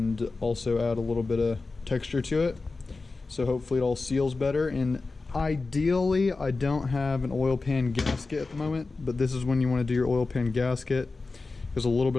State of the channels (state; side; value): quieter; right; 3.8 dB